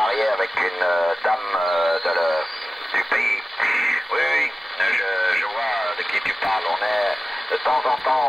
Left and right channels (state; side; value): normal; both; correlation 0.95